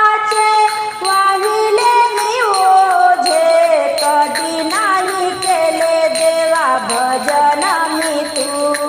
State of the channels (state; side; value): identical; both; correlation 1.00